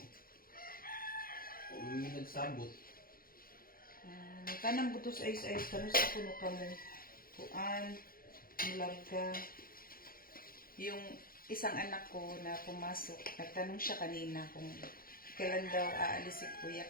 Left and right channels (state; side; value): late; right; 0.42 ms